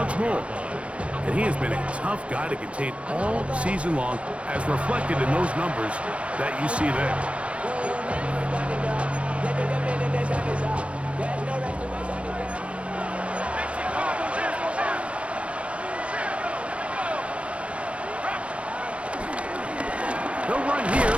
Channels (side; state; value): left; late; 0.061 ms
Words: more. And he has been a tough guy to contain all season long, as reflected in those numbers that you see there. They'll run here